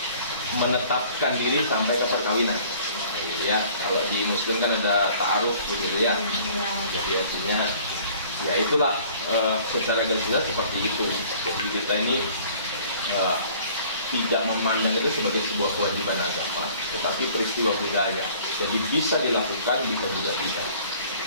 menetapkan diri sampai ke perkawinan. Ya, kalau di Muslim kan ada ta'aruf begitu ya. Jadi artinya ya itulah secara garis besar seperti itu. Jadi kita ini tidak memandang itu sebagai sebuah kewajiban agama, tetapi peristiwa budaya. Jadi bisa dilakukan, bisa juga tidak.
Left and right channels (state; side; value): inverted; both; correlation -0.52